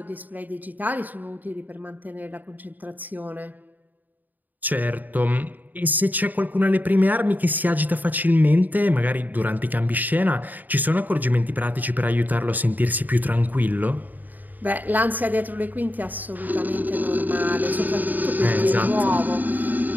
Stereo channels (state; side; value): late; left; 0.085 ms